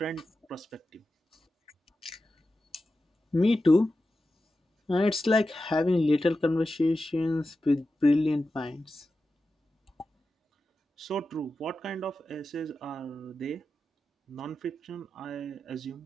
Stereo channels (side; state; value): both; normal; correlation 0.92